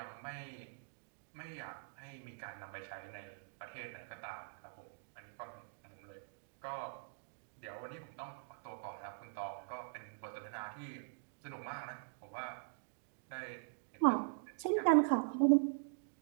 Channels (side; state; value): left; silent; digital silence